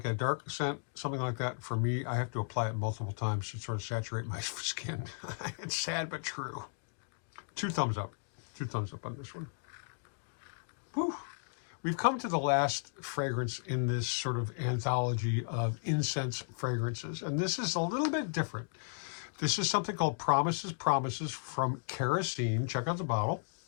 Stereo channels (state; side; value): silent; right; digital silence